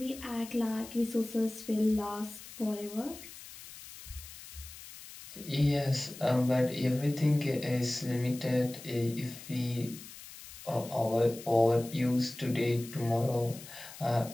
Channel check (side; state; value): left; noise; hiss, 15 dB below the sound